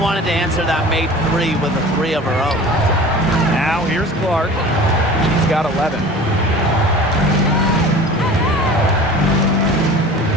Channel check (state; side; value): normal; both; correlation 0.40